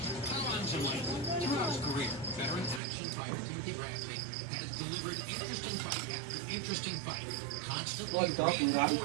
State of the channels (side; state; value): left; drops out; at 2.8 s